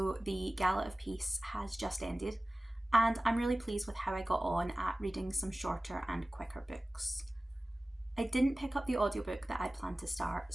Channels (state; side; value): normal; both; correlation 0.97